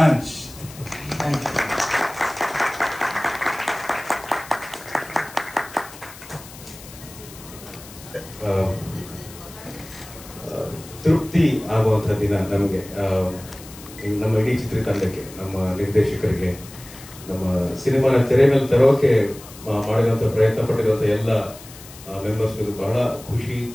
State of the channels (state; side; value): noise; left; hiss, 18 dB below the sound